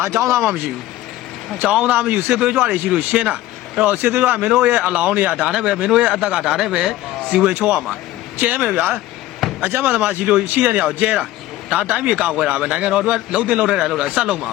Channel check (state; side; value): quieter; right; 15.3 dB